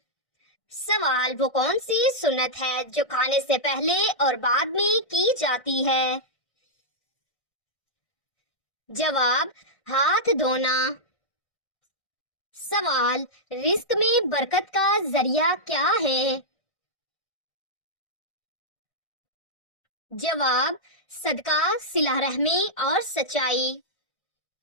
سوال، وہ کون سی سنت ہے جو کھانے سے پہلے اور بعد میں کی جاتی ہے؟ جواب، ہاتھ دھونا۔ سوال، رزق میں برکت کا ذریعہ کیا ہے؟ جواب، صدقہ، صلہ رحمی اور سچائی۔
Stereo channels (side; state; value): right; late; 1.6 ms